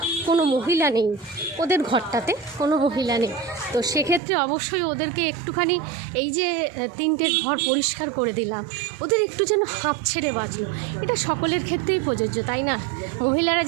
কোনো মহিলা নেই, ওদের ঘরটাতে কোনো মহিলা নেই, তো সেক্ষেত্রে অবশ্যই ওদেরকে একটুখানি, এই যে 3টে ঘর পরিষ্কার করে দিলাম, ওদের একটু যেন হাঁপ ছেড়ে বাঁচলো। এটা সকলের ক্ষেত্রেই প্রযোজ্য, তাই না? মহিলারা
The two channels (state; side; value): drops out; left; at 4.2 s